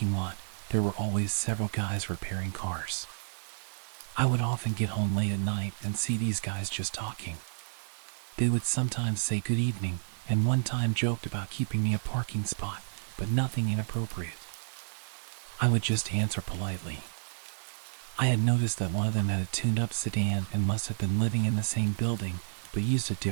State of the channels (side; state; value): left; silent; 57 dB below the other